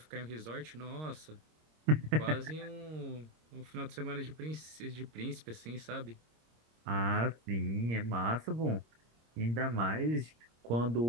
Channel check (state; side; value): late; left; 26 ms